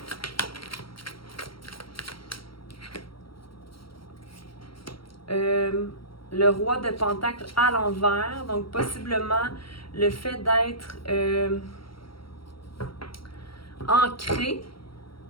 Le roi de Pentacle à l'envers. Donc, possiblement, le fait d'être ancré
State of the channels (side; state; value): right; late; 0.74 ms